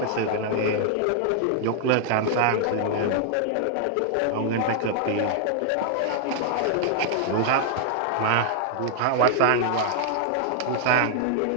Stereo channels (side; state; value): both; different; correlation 0.00